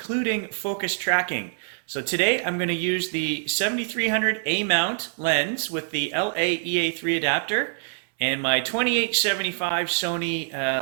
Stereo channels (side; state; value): left; silent; 61 dB below the other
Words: focus tracking. So today I'm going to use the 7300 A mount lens with the LA EA3 adapter and my 2875